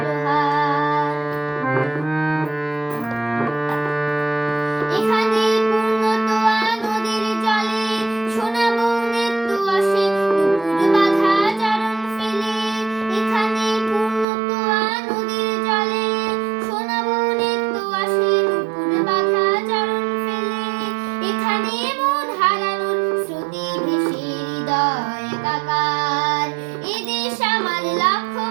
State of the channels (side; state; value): left; drops out; at 14.2 s